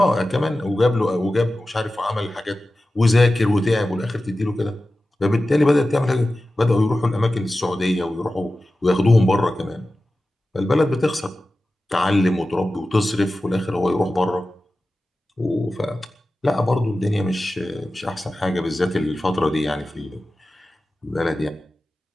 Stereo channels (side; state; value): both; normal; correlation 0.95